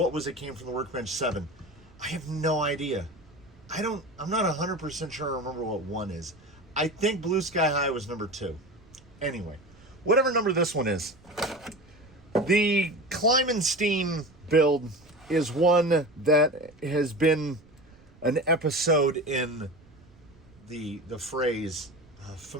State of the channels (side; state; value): right; noise; rumble, 26 dB below the sound